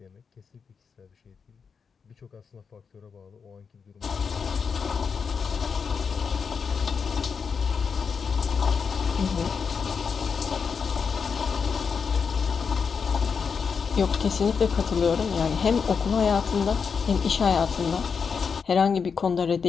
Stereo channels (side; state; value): right; quieter; 5.9 dB